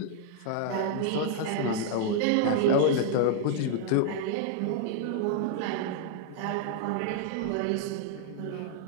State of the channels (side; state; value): both; different; correlation -0.01